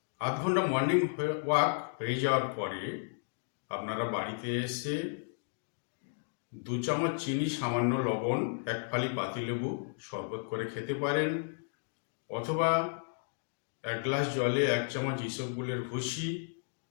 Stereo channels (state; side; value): silent; right; digital silence